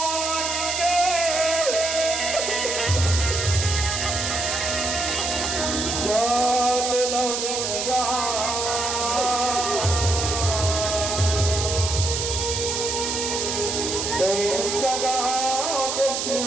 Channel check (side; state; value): right; noise; hiss, 2 dB below the sound